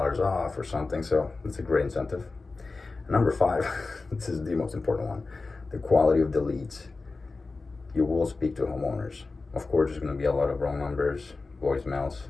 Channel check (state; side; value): quieter; right; 3.8 dB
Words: off or something. So it's a great incentive. And number five, this is the most important one, the quality of the leads. You will speak to homeowners. Of course, there's going to be a lot of wrong numbers, voicemails,